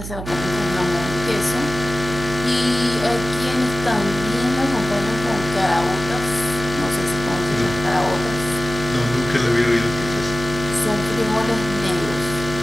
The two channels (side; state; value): right; noise; hum, 9 dB below the sound